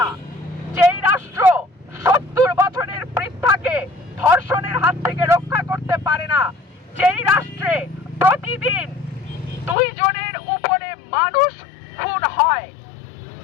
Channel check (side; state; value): right; drops out; at 9.8 s